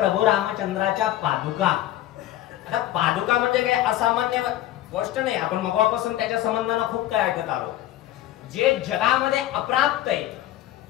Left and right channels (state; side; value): quieter; right; 13.7 dB